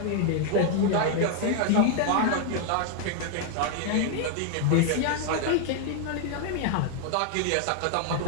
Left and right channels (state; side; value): different; both; correlation 0.00